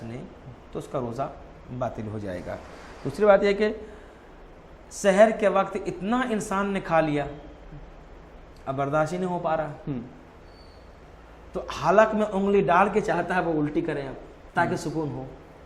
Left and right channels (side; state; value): both; identical; correlation 1.00